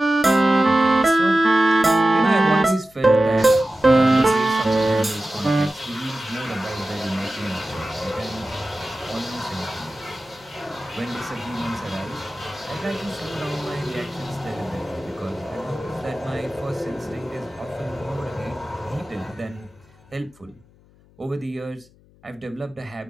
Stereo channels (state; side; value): noise; left; hum, 29 dB below the sound